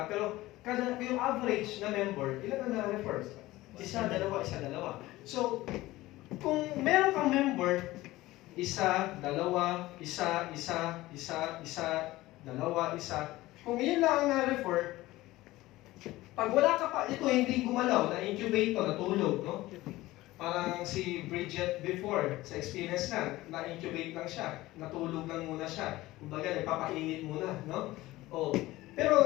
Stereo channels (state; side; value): quieter; right; 17.9 dB